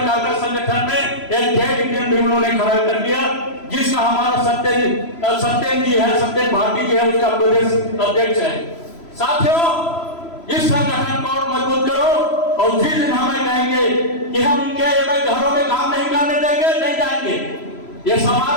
का संगठन में एक जेट इंडियन भी उन्होंने खड़ा कर दिया, जिसका हमारा सत्येन जी है, सत्येन भारती जी है, उसका प्रदेश अध्यक्ष है। साथियों, इस संगठन को मजबूत करो, और जिस दिन हमें कहेंगे कि हम इनके घरों में काम नहीं करने देंगे, नहीं जाएंगे, ये समाज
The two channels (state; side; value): late; right; 3.0 ms